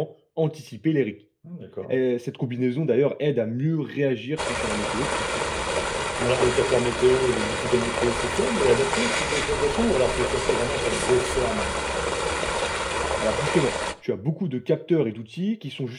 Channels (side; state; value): both; identical; correlation 1.00